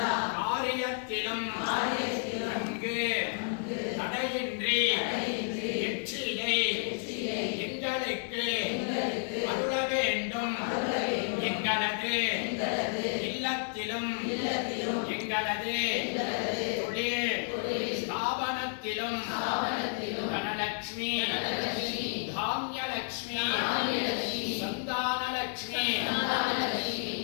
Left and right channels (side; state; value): right; silent; digital silence